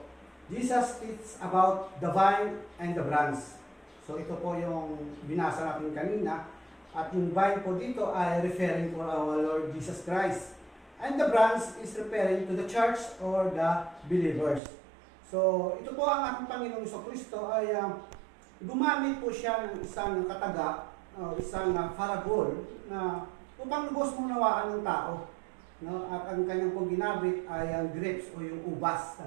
Jesus teaches about the vine and the branch. So ito po yung binasa natin kanina. At yung vine po dito ay referring to our Lord Jesus Christ. And the branch is referring to the church or the believers. So ito po ang ating Panginoong Jesucristo ay gumamit po siya ng isang kataga, isang parabol na upang lubos munawaan ng tao. No? At ang kanyang pong ginamit ay ang grapes o yung ubas.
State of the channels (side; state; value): left; drops out; at 14.6 s